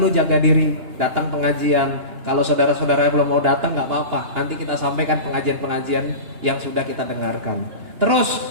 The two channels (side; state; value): left; late; 2.9 ms